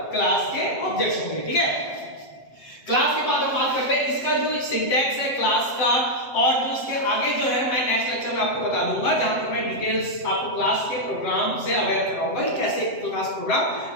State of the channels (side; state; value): right; late; 7.7 ms